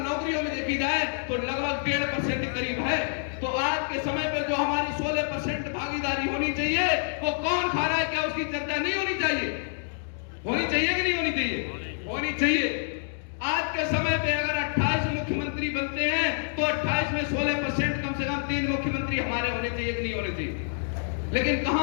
में देखी जाए तो लगभग 1.5% करीब है। तो आज के समय पे जो हमारी 16% भागीदारी होनी चाहिए वो कौन खा रहा है? क्या उसकी चर्चा नहीं होनी चाहिए? होनी चाहिए कि नहीं होनी चाहिए? होनी चाहिए। आज के समय पे अगर 28 मुख्यमंत्री बनते हैं तो 28 में 16% कम से कम 3 मुख्यमंत्री हमारे होने चाहिए कि नहीं होने चाहिए? लेकिन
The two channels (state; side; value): silent; right; digital silence